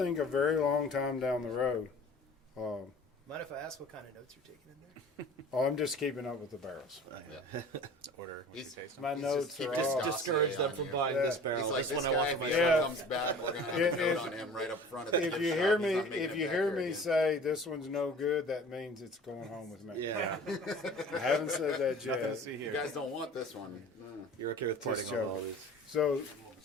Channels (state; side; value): normal; both; correlation 0.43